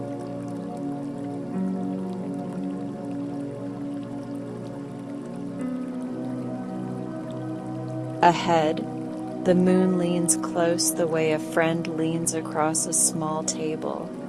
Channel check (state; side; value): noise; right; rumble, 29 dB below the sound